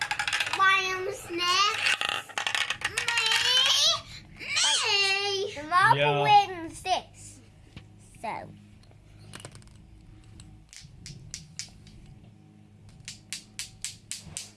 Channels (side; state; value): both; identical; correlation 1.00